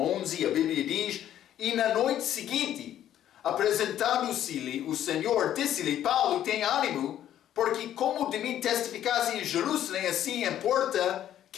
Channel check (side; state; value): right; quieter; 11.3 dB